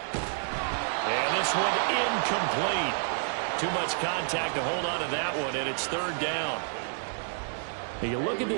And this one incomplete. Too much contact to hold on to that one, and it's 3rd down. You look at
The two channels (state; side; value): silent; left; digital silence